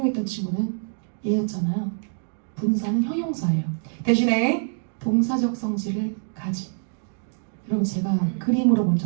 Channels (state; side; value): silent; left; 59 dB below the other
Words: 친구는 얘였잖아요. 분사는 형용사예요. 대신에 동사적 성질을 가진. 여러분 제가 그림으로 먼저